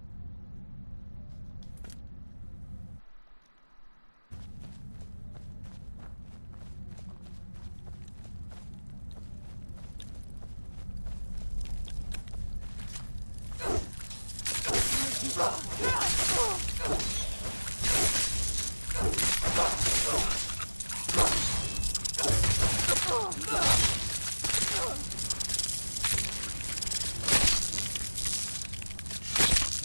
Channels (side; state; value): both; inverted; correlation -1.00